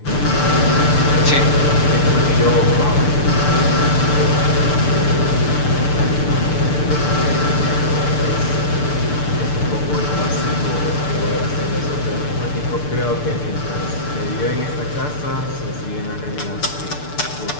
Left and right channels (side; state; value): right; late; 6.8 ms